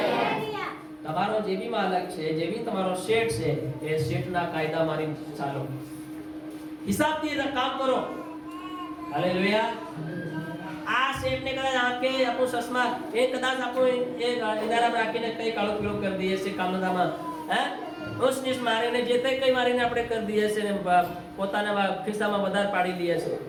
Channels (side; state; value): both; identical; correlation 1.00